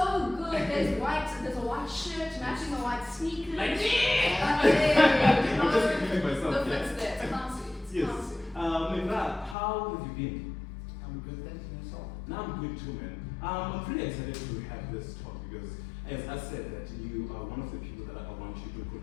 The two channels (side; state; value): right; drops out; at 9.6 s